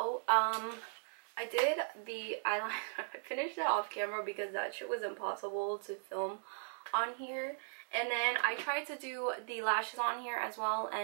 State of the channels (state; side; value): silent; left; digital silence